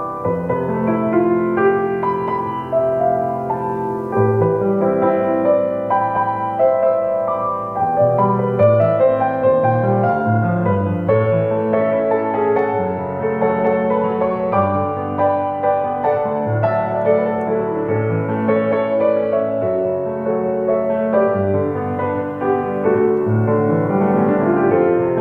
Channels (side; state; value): both; identical; correlation 1.00